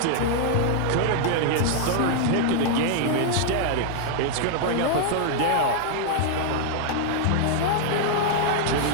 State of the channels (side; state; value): both; different; correlation 0.00